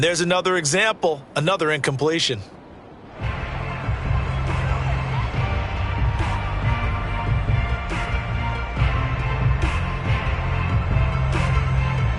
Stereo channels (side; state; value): both; identical; correlation 1.00